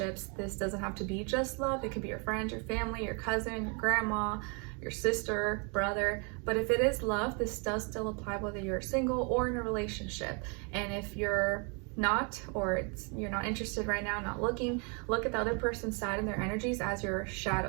this doesn't have to be just love. It could be your friends, your family, your cousin, your grandma, your sister, brother. But if it is love, this does still apply whether you're single or in a relationship. And if you're not, or you're not interested right now, not looking, look at the other person's side and their energies as your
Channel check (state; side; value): quieter; left; 34.7 dB